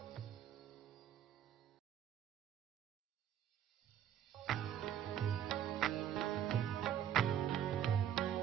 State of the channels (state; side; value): quieter; left; 10.0 dB